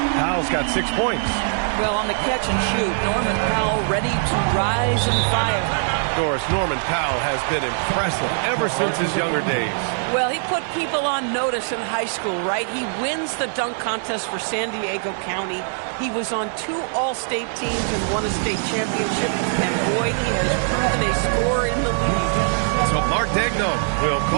Powell's got 6 points. Well, on the catch and shoot, Norman Powell ready to rise and fire. Doris, Norman Powell has been impressive ever since his younger days. Well, he put people on notice in high school, right? He wins the dunk contest for San Diego County. He was on 2 All-State teams and won a state championship. And boy, he has proven a scorer in the league. So Mark Dagnon will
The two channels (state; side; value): silent; left; digital silence